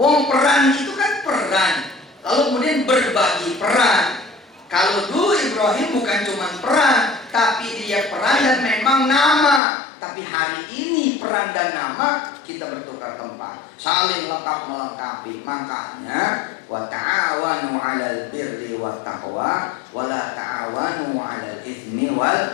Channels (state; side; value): drops out; right; at 9.6 s